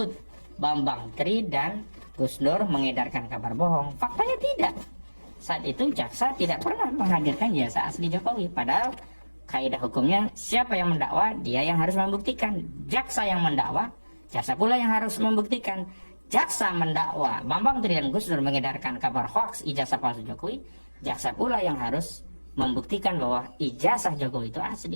Bambang Tri dan Gus Nur mengedarkan kabar bohong. Faktanya tidak. Saat itu jaksa tidak pernah menghadirkan ijazah asli Jokowi. Padahal kaidah hukumnya siapa yang mendakwa, dia yang harus membuktikan. Jaksa yang mendakwa, jaksa pula yang harus membuktikan. Jaksa mendakwa Bambang Tri dan Gus Nur mengedarkan kabar hoaks ijazah palsu Jokowi, jaksa pula yang harus membuktikan bahwa ijazah Jokowi itu asli,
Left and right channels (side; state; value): both; inverted; correlation -1.00